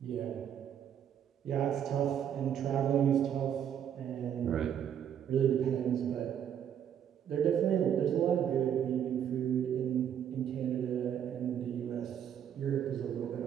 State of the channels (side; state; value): left; quieter; 9.2 dB